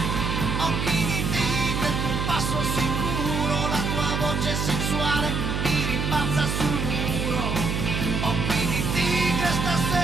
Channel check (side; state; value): right; noise; hum, 1 dB below the sound